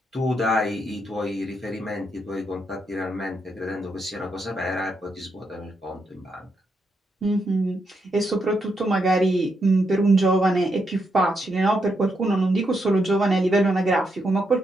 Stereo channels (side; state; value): both; normal; correlation 0.80